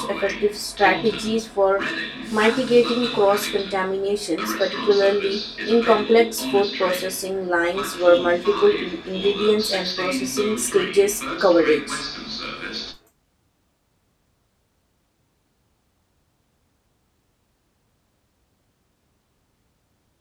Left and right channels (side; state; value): both; identical; correlation 1.00